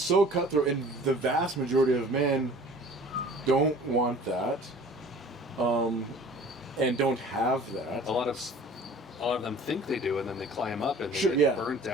cutthroat, and the vast majority of men don't want that, and don't have that. A lot of them think they do, and then they climb up and they Sure, get burnt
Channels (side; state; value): both; normal; correlation 0.47